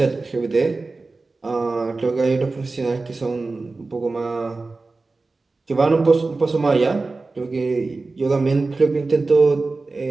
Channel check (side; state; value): left; quieter; 3.6 dB